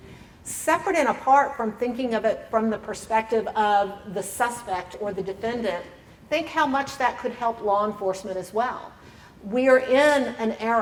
Separate and apart from thinking of it from the perspective of the suspect or the defendant, think how much that could help law enforcement as well. We are in an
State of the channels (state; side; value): identical; both; correlation 1.00